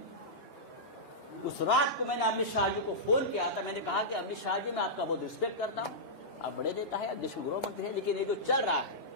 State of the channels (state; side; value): normal; both; correlation -0.12